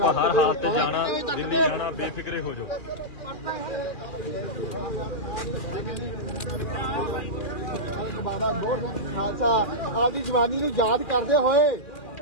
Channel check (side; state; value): right; late; 2.4 ms